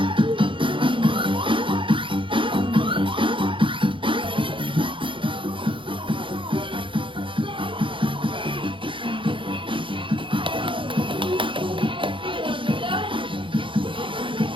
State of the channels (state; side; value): late; left; 0.25 ms